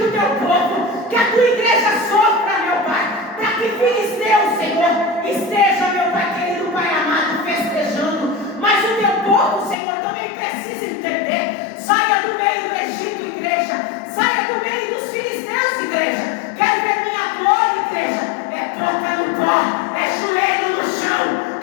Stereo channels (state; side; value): drops out; right; at 9.8 s